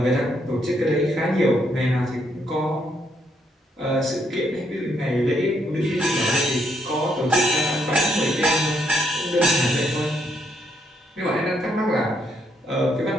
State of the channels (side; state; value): both; normal; correlation 0.74